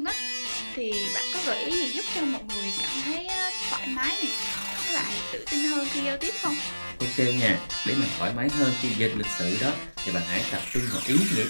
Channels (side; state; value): both; inverted; correlation -1.00